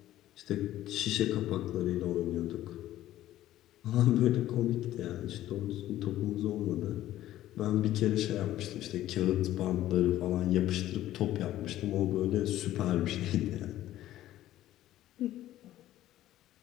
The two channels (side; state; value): right; quieter; 13.9 dB